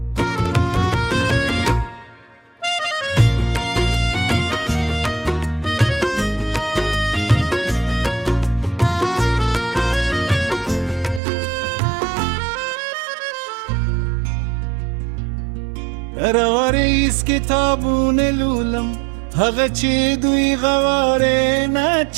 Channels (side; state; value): left; drops out; at 11.2 s